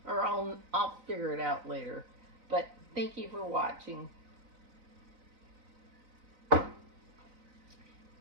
or I'll figure it out later. But thank you for watching.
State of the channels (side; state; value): left; late; 4.0 ms